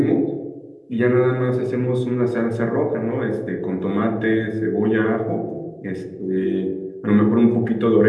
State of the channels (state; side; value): identical; both; correlation 1.00